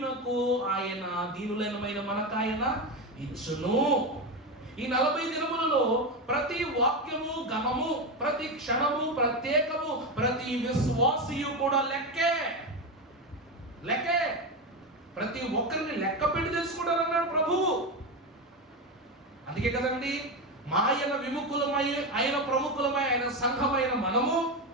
దీనులైన మనకాయన ఇచ్చును. ఈ 40 దినములలో ప్రతి వాక్యము ఘనము, ప్రతి క్షణము ప్రత్యేకము, ప్రతి విశ్వాసియు కూడా లెక్కే. ప్రతి ఒక్కరిని లెక్క పెట్టి తెలుసుకుంటారన్నాడు ప్రభువు. అందుకే కదండి ఆయన విముఖులమై, ఆయన ప్రముఖులమై, ఆయన సంఘమైన మనము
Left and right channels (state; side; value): normal; both; correlation 0.15